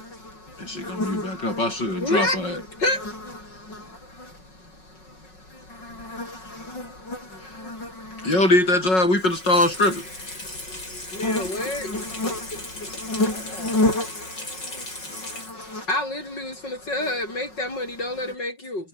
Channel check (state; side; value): late; right; 5.4 ms